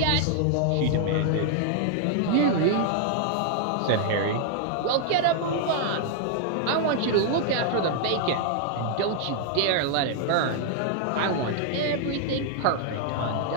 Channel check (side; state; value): both; different; correlation 0.00